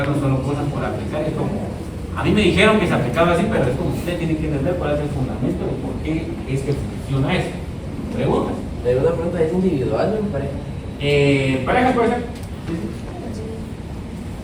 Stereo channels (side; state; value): both; identical; correlation 1.00